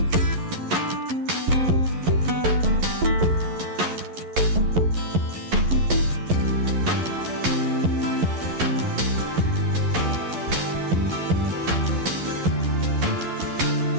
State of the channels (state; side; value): late; left; 11 ms